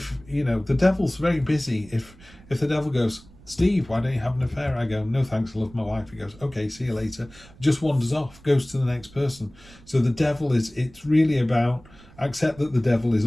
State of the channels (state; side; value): noise; right; rumble, 24 dB below the sound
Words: the devil's very busy. If the devil goes, Steve, why don't you have an affair? I go, no thanks, I love my wife. He goes, okay, see you later. Just wanders off, goes to the next person. So the devil it's really about, accept that the devil is